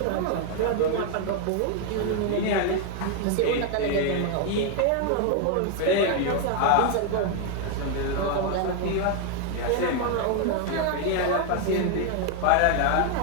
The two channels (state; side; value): different; both; correlation 0.00